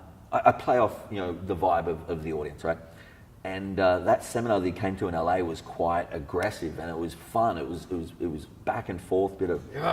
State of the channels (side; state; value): both; identical; correlation 1.00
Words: I play off, the vibe of the audience, right? And that seminar that he came to in LA was quite aggressive and it was fun. It was back and forth, bit of